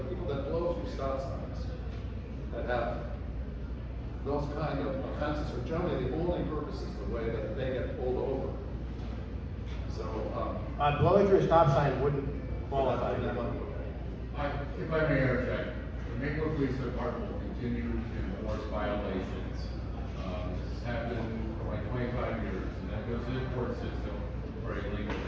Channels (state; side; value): identical; both; correlation 1.00